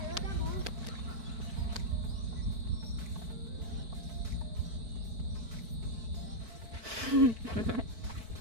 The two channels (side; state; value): left; late; 4.6 ms